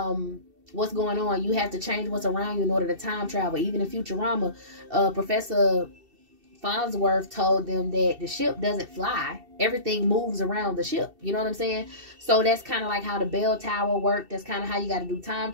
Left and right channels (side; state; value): left; late; 2.7 ms